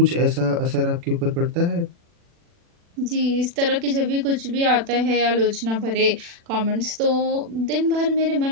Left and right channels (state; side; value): late; left; 40 ms